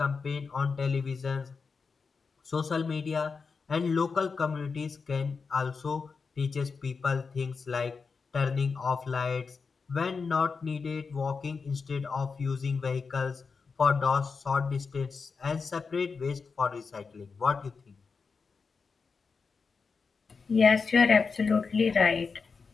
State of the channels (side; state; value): right; quieter; 5.0 dB